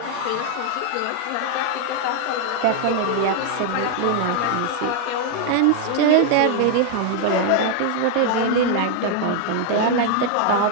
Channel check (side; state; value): both; different; correlation 0.00